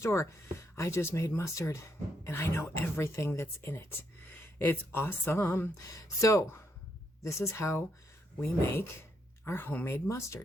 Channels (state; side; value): normal; both; correlation 0.77